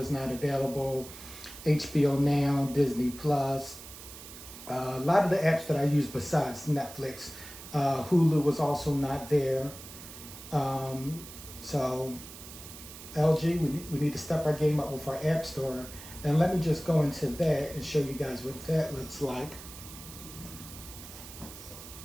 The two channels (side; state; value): right; noise; hiss, 14 dB below the sound